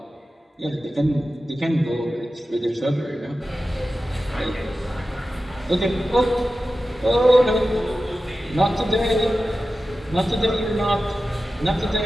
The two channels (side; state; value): both; normal; correlation 0.93